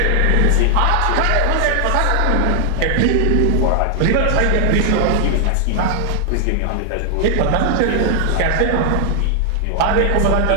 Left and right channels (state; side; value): different; both; correlation 0.00